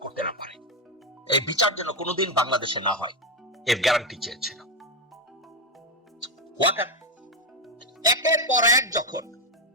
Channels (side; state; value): both; normal; correlation 0.08